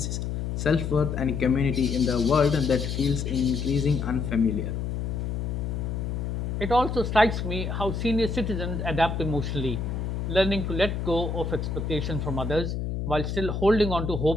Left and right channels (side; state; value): left; noise; hum, 3 dB below the sound